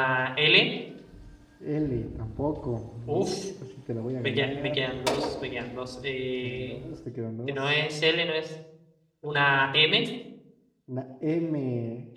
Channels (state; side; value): identical; both; correlation 1.00